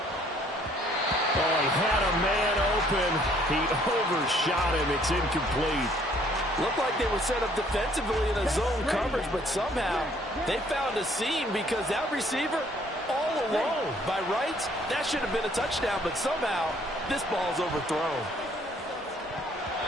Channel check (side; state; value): both; normal; correlation 0.62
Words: Oh, he had a man open. He overshot him. It's incomplete. Looked like they were set up defensively in a zone coverage, but somehow they found a seam, because that receiver all alone. By rights, that should have been a touchdown, but somehow this ball's overthrown.